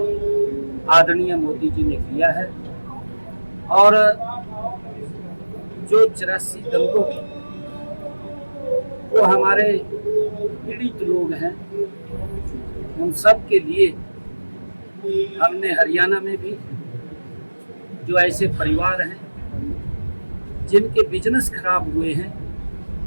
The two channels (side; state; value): both; inverted; correlation -1.00